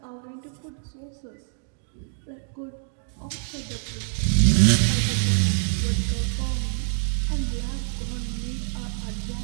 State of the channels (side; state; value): left; silent; 61 dB below the other